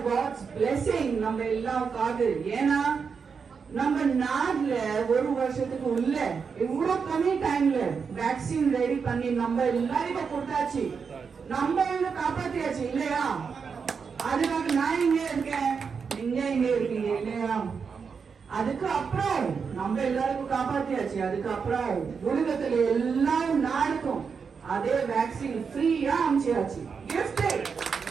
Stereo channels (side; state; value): left; quieter; 5.8 dB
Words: காட்ஸ் பிளெஸிங் நம்ம எல்லாருக்காக. ஏன்னா நம்ம நாட்டுல ஒரு வருஷத்துக்கு உள்ள இவ்வளவு கம்மி டைம்ல வேக்சின் ரெடி பண்ணி நம்ம எல்லாருக்கும் கொடுத்தாச்சு, நம்ம காப்பாத்தியாச்சு இல்லையா? அதுக்காக நான் இங்கே இருக்கேன், நீங்க இங்கே இருக்கீங்க இல்லையா? அதுக்கு அப்புறம் நம்ம எல்லாருக்கும் காப்பாத்தியாச்சு. அதுக்கப்புறம் உலகத்துல எல்லா நாடுக்கும் அதே வேக்சின் ஃப்ரீயா அனுப்பிச்சாச்சு.